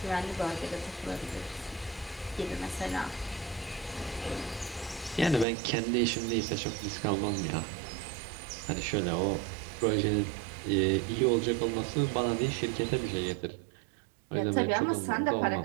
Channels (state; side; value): drops out; left; at 5.5 s